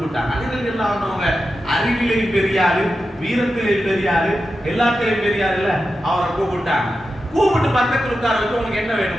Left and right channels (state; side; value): normal; both; correlation 0.90